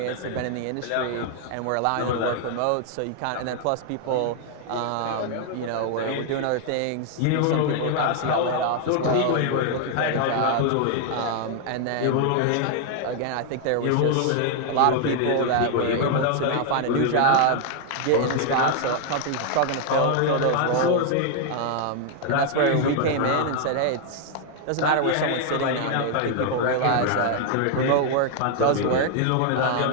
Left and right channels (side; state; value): both; different; correlation 0.00